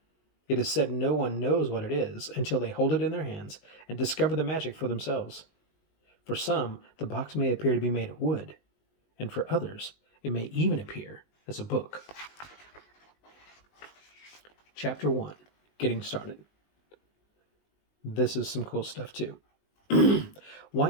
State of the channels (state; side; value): late; right; 19 ms